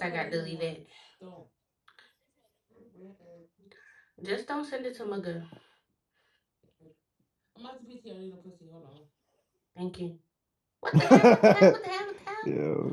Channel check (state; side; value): identical; both; correlation 1.00